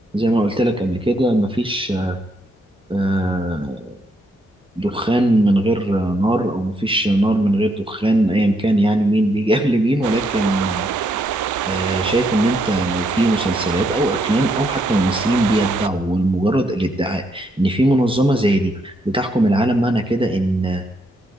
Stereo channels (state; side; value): normal; both; correlation 0.76